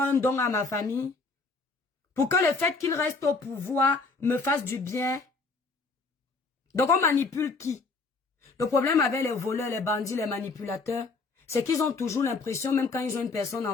un don à ma famille. Pour que le fait qu'il reste au pouvoir me fasse du bien. Donc on manipule qui? Le problème avec les voleurs, les bandits, les manipulateurs, c'est qu'ils ont toujours l'impression, même quand ils ont une personne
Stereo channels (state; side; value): quieter; right; 4.0 dB